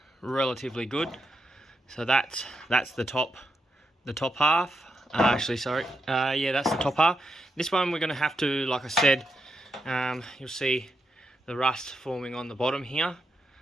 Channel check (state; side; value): normal; both; correlation 0.84